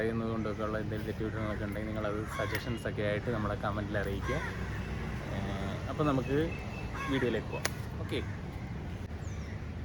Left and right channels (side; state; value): both; identical; correlation 1.00